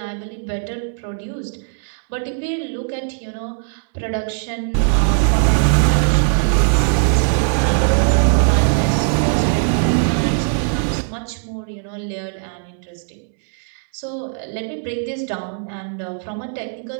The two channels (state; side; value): silent; left; digital silence